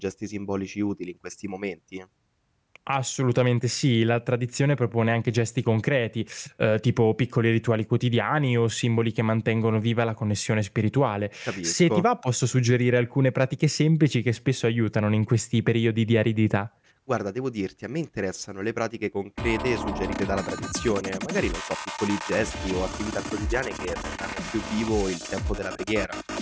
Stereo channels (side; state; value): both; identical; correlation 1.00